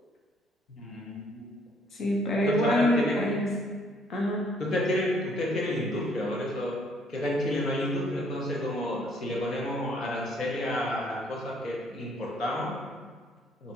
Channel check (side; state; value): both; normal; correlation 0.64